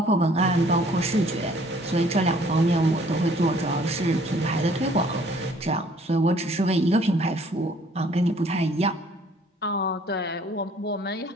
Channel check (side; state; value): both; normal; correlation 0.58